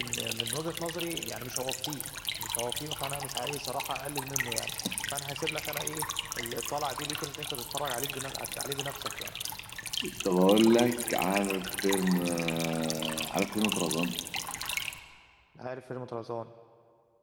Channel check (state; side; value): identical; both; correlation 1.00